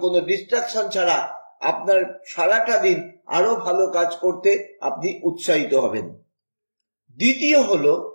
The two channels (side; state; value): both; inverted; correlation -1.00